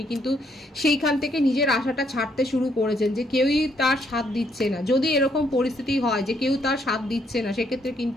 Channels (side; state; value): both; normal; correlation 0.72